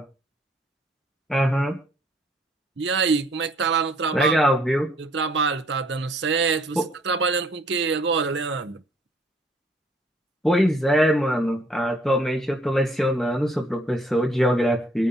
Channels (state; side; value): normal; both; correlation 0.62